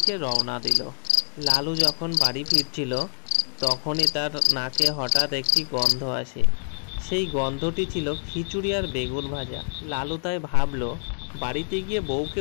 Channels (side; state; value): right; silent; 61 dB below the other